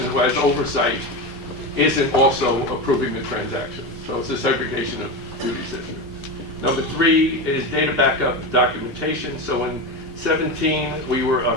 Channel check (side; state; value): both; normal; correlation 0.19